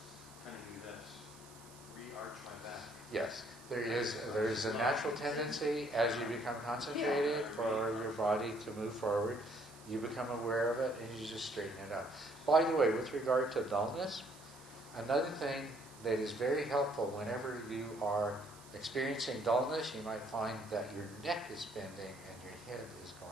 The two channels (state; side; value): noise; right; hiss, 21 dB below the sound